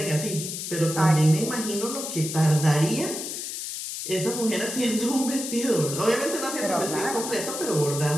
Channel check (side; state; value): left; noise; hiss, 6 dB below the sound